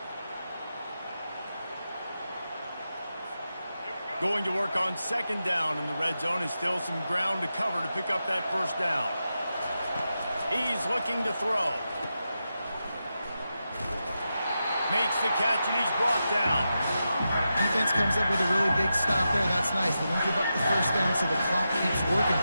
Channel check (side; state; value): both; inverted; correlation -0.89